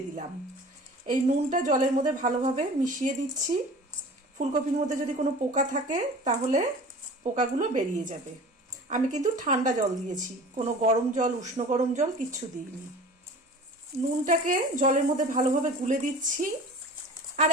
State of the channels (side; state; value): both; normal; correlation 0.41